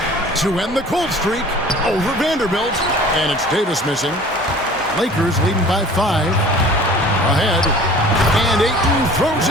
To end the cold streak over Vanderbilt. And it's Davis missing. Lakers leading by 5. Ahead. And Ayton throws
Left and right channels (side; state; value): both; normal; correlation 0.46